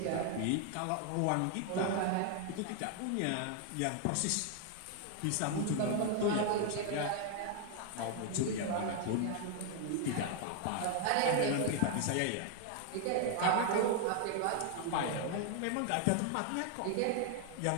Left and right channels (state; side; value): different; both; correlation 0.00